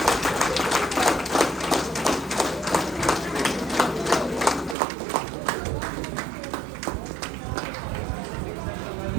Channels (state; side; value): drops out; left; at 4.8 s